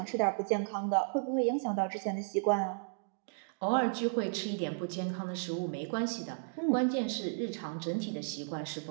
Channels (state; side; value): silent; left; digital silence